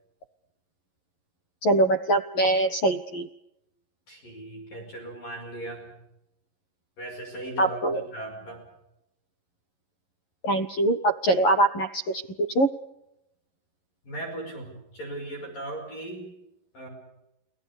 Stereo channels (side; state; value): right; late; 11 ms